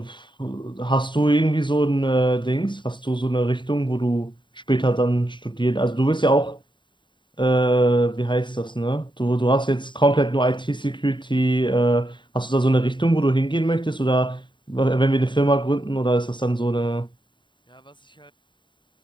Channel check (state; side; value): late; right; 0.23 ms